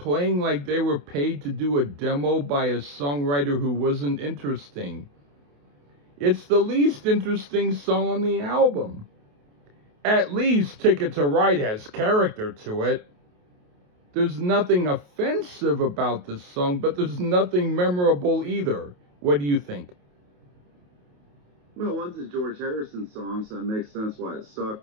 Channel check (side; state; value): left; late; 28 ms